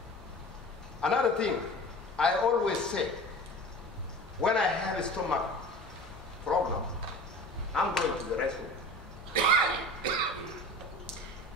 Another thing, I always say, when I have a stomach problem, I'm going to the restroom.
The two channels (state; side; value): normal; both; correlation 0.37